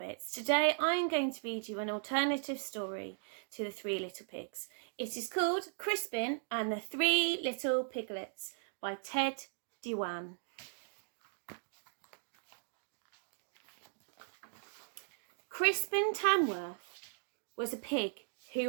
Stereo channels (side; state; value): left; silent; digital silence